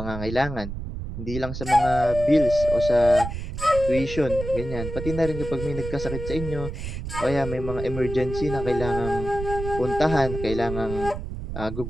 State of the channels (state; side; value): noise; right; rumble, 7 dB below the sound